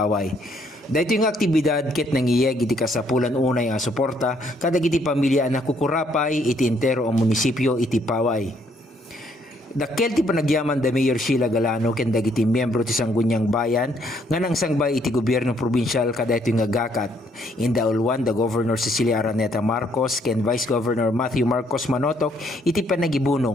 Dahito yung aktibidad ket nangiyeg iti kasapulan unay nga suporta kadag iti pamilya na kukurapay iti entero ang munisipyo iti Paway. Dakkel ti panagyaman da Mayor Sheila Galano ken dagiti miyembro ti Sangguniang Bayan nga nang sangbay iti gobyerno probinsyal kadaytoy nga gakat. In the ulwan the Governor Cecilia Araneta Marcos ken Vice Governor Matthew Marcos Manotok iti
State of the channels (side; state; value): both; normal; correlation 0.68